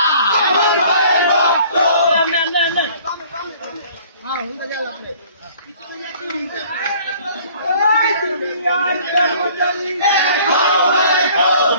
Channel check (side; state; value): both; inverted; correlation -0.53